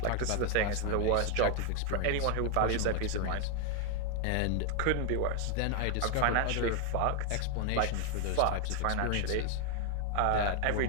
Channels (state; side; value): different; both; correlation 0.00